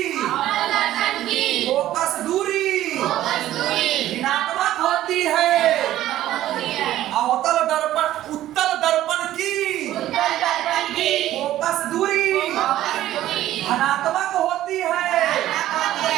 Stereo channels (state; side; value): quieter; left; 13.6 dB